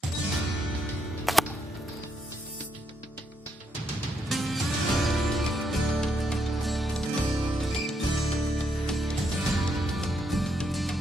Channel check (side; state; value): both; normal; correlation 0.77